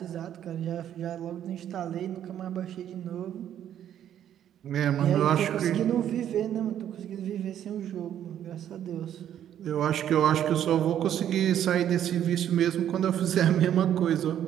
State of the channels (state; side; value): quieter; left; 10.5 dB